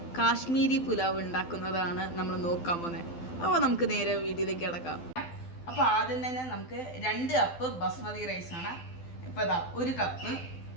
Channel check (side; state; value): right; late; 12 ms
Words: കാശ്മീരി പുലാവ് ഉണ്ടാക്കുന്നതാണ് നമ്മൾ നോക്കാൻ പോകുന്നത്. അപ്പോൾ നമുക്ക് നേരെ വീഡിയോയിലേക്ക് കിടക്കാം. അപ്പോൾ ആദ്യം തന്നെ നമുക്ക് 2 കപ്പ് ബസ്മതി റൈസാണ്. ഇപ്പോൾ അതാ 1 കപ്പ്,